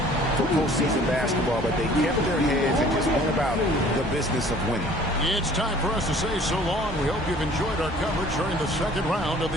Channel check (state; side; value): normal; both; correlation 0.52